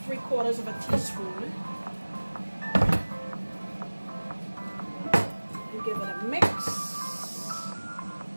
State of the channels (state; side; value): inverted; both; correlation -1.00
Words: 3/4 of a teaspoon. And give it a mix.